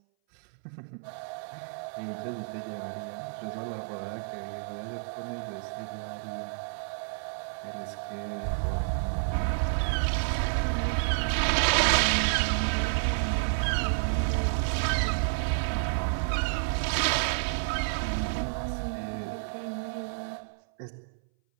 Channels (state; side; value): silent; left; 58 dB below the other